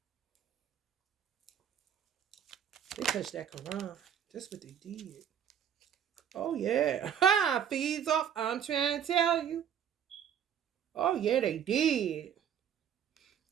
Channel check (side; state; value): left; quieter; 8.8 dB